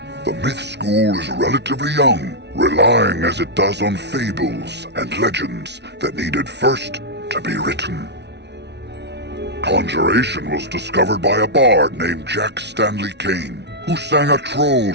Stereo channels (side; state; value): left; late; 0.50 ms